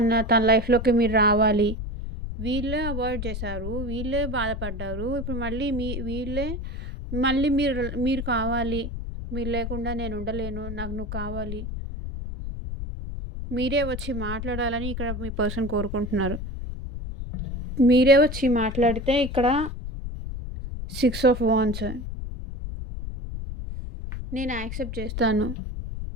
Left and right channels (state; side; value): noise; left; rumble, 6 dB below the sound